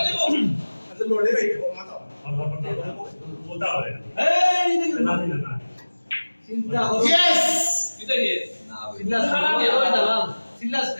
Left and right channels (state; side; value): inverted; both; correlation -1.00